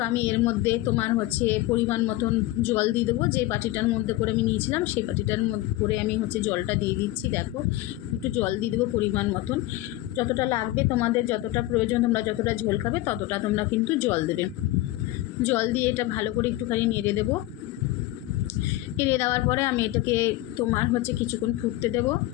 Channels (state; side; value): quieter; right; 17.0 dB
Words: আমি এর মধ্যে তোমার হচ্ছে পরিমাণ মতন জল দিয়ে দেবো। যে বাটিটার মধ্যে করে আমি নিয়েছিলাম সেই বাটিটার মধ্যে করে আমি হচ্ছে জলটা দিয়ে দিচ্ছি। দেখো একটু জল দিয়ে দেবো পরিমাণ মতন, যতটা লাগবে তোমাদের, যতটা প্রয়োজন, তোমরা যতটা ঝোল খাবে ততটা তোমরা কিন্তু জল দেবে। জল দিয়ে এটা ভালো করে একটুখানি নেড়ে দেবো। নেড়ে দেওয়ার পরে আমি এটাকে তোমার হচ্ছে কিছুক্ষণ ফুটতে দেবো।